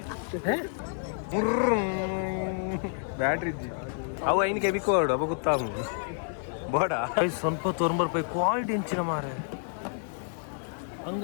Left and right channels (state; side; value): silent; right; digital silence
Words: Battery ಇದ್ದಿ ಅವು ಐನಿಗೆ ಬಿಕ್ಕೋಡು ಅವ ಗೊತ್ತಾಗು ಬೇಡ ಸ್ವಲ್ಪ ₹90 ಕ್ವಾಲಿಟಿ ಹೆಂಚಿನ ಮಾರೆ